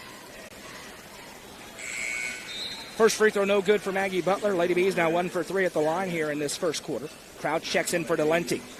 First free throw no good for Maggie Butler. Lady Bees now 1 for 3 at the line here in this first quarter. Crouch checks in for Delente.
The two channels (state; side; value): identical; both; correlation 1.00